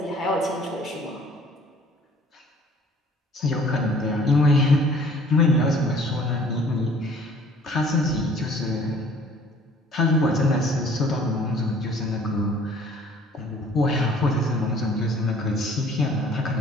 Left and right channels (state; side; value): normal; both; correlation 0.54